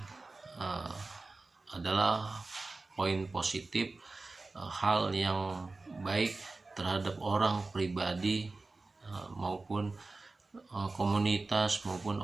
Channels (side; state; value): left; quieter; 3.5 dB